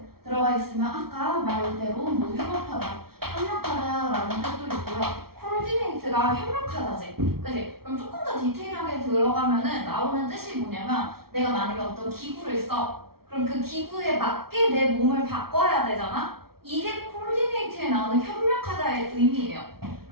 들어가 있으면 아까 말대로 뭐 협력하다, 협력하다라는 뜻도 있고요. coordinate가 협력하다지. 그치? 그럼 조금 더 디테일하게 들어가면은 나오는 뜻이 뭐냐면 내가 만약에 어떤 기구를 써. 그럼 그 기구에 맞게 내 몸을 바꿔야 되잖아? 이게 coordinate에 나오는 협력하다의 의미예요.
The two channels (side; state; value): left; late; 0.94 ms